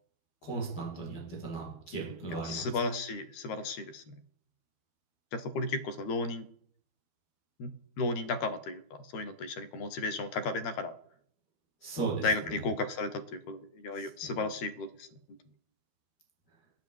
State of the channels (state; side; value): late; right; 12 ms